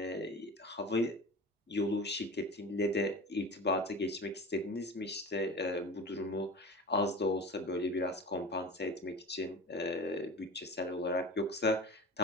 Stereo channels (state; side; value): normal; both; correlation 0.33